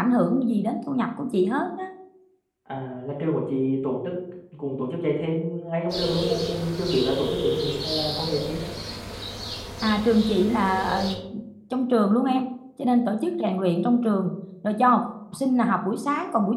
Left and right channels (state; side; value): identical; both; correlation 1.00